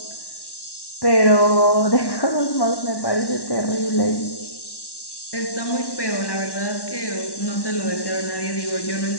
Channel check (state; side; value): late; right; 1.1 ms